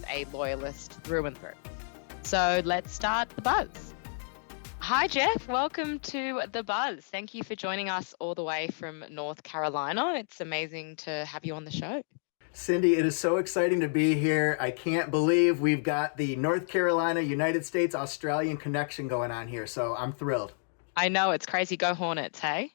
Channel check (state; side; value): silent; right; digital silence